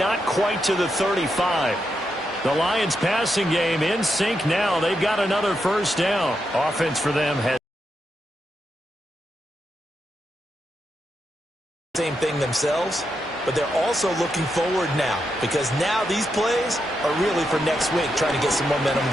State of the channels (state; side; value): normal; both; correlation 0.84